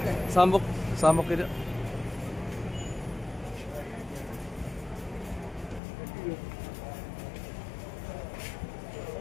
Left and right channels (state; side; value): drops out; right; at 5.8 s